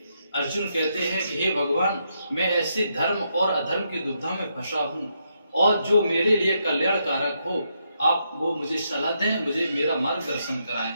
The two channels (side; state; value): both; inverted; correlation -0.79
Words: अर्जुन कहते हैं कि हे भगवान, मैं ऐसे धर्म और अधर्म की दुविधा में फंसा हूँ, और जो मेरे लिए कल्याणकारक हो आप वो मुझे सलाह दें, मुझे मेरा मार्गदर्शन कराएं।